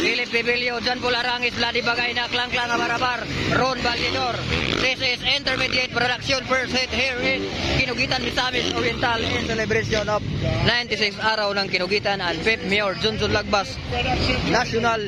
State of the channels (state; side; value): identical; both; correlation 1.00